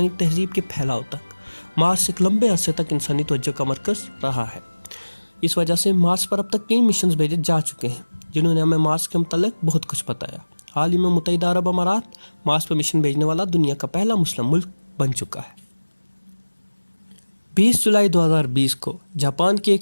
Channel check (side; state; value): both; inverted; correlation -1.00